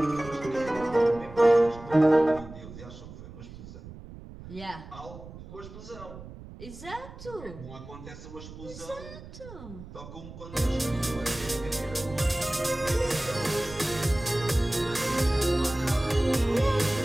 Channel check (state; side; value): noise; right; rumble, 15 dB below the sound